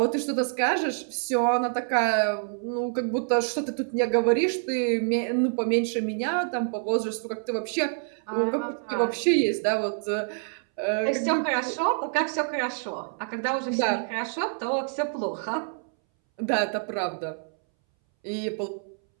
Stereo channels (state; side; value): silent; left; 60 dB below the other